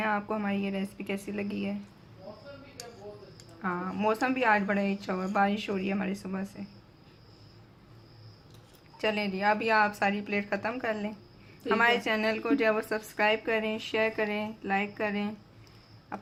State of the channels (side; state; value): both; identical; correlation 1.00